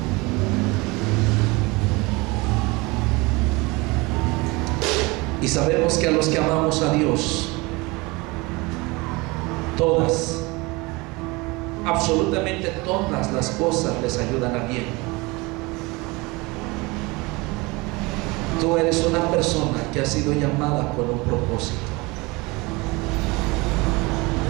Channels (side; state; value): left; quieter; 24.5 dB